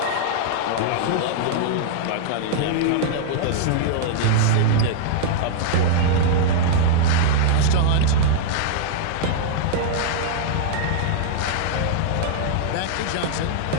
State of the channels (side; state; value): both; different; correlation -0.01